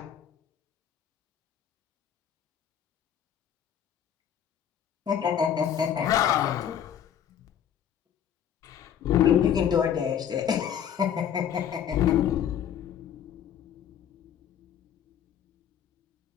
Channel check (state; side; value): quieter; right; 9.2 dB